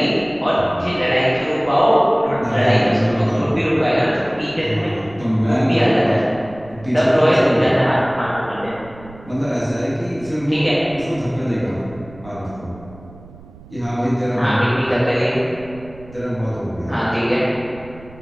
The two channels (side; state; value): right; noise; rumble, 20 dB below the sound